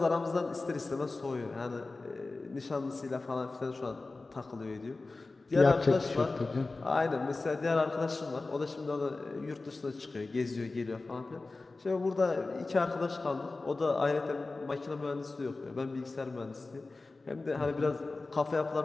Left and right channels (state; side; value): quieter; right; 3.5 dB